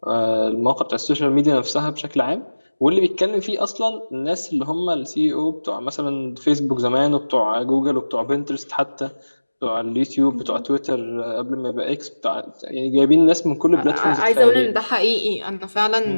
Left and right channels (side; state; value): both; inverted; correlation -1.00